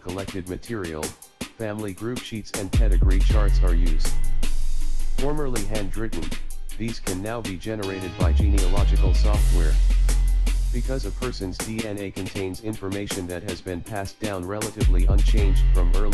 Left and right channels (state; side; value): identical; both; correlation 1.00